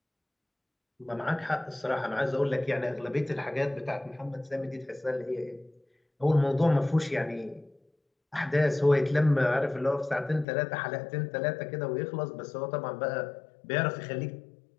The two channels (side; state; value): right; drops out; at 10.5 s